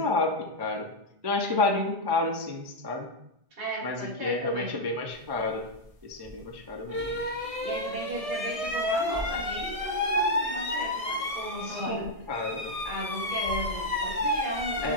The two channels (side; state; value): left; late; 1.6 ms